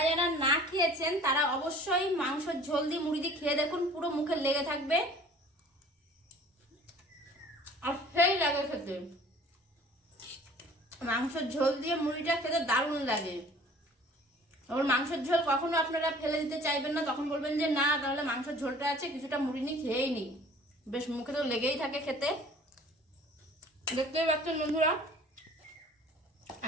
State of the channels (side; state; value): both; normal; correlation 0.49